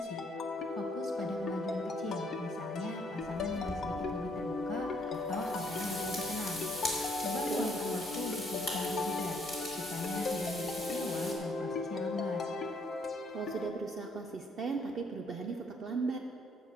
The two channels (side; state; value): both; normal; correlation 0.67